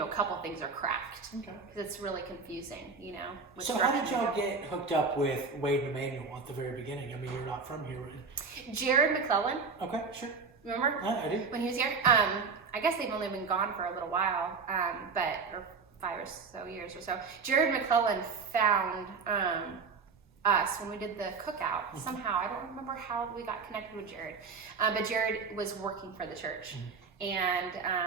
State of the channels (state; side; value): quieter; left; 4.9 dB